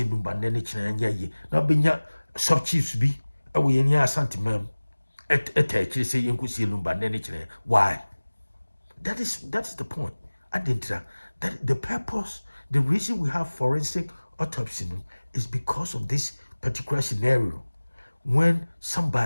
Lumba Nenich and ye. Now benya sub chiefs be away in your sentiment. Actually say you could see Lumba Nenich. Why? That's the point. I didn't that the purpose, the reason we have forensic autopsy is because of this particular scenario. When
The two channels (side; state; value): both; inverted; correlation -1.00